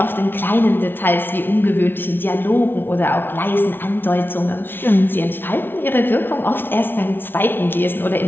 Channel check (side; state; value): right; late; 0.10 ms